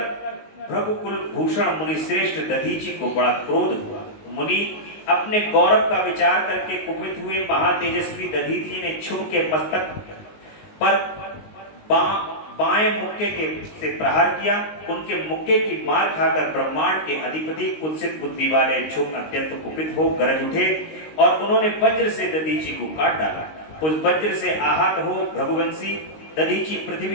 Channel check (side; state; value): right; late; 19 ms